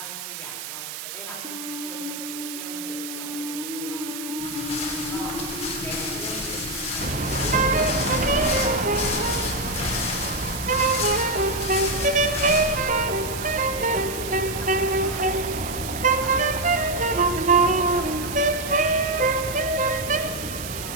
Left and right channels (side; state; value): right; noise; hiss, 8 dB below the sound